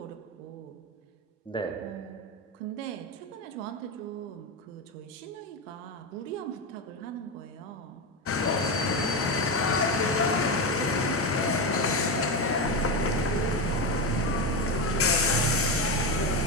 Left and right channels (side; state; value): both; normal; correlation 0.14